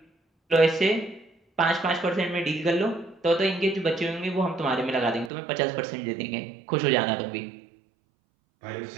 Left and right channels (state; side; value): drops out; left; at 5.3 s